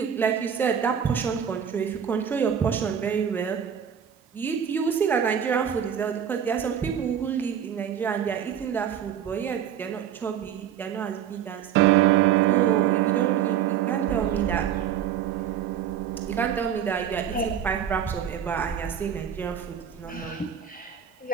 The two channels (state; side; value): quieter; left; 8.9 dB